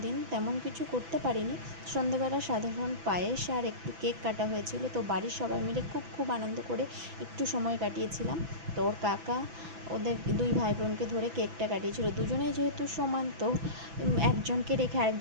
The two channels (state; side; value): late; left; 6.0 ms